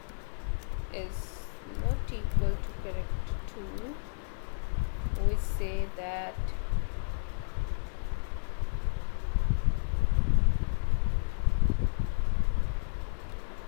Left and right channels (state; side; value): silent; right; digital silence